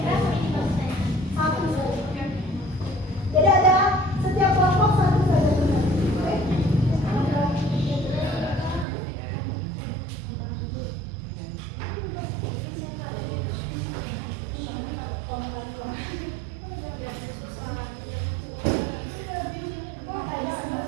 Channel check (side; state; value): left; drops out; at 8.8 s